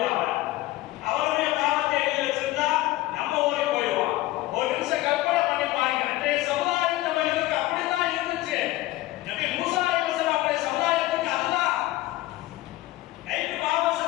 அவருடைய பாவத்தை எழுதி வச்சிருந்தா நம்ம ஓடி போயிடுவோம். ஒரு நிமிஷம் கற்பனை பண்ணி பாருங்க. அன்றைய சமுதாயத்தவர்களுக்கு அப்படித்தான் இருந்துச்சு. நபி மூசா அலைஹிஸ்ஸலாம் அவருடைய சமுதாயத்துக்கு அதுதான். நைட்டு பாவம்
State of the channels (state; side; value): quieter; right; 17.5 dB